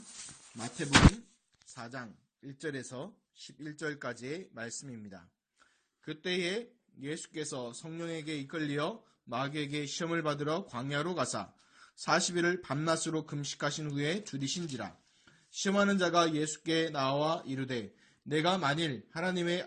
마태복음 4장 1절에서 11절까지의 말씀입니다. 그때에 예수께서 성령에게 이끌려 마귀에게 시험을 받으러 광야로 가사 40일을 밤낮으로 금식하신 후에 줄이신지라. 시험하는 자가 예수께 나와 이르되 내가 만일 하나님의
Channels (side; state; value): both; identical; correlation 1.00